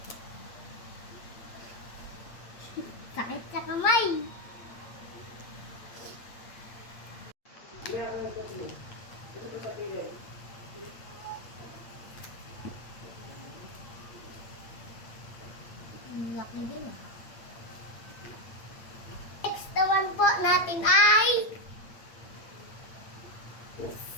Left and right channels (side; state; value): right; late; 8.7 ms